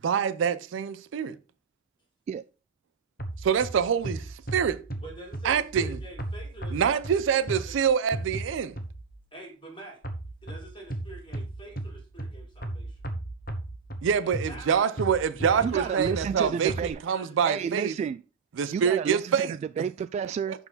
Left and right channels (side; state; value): left; quieter; 6.4 dB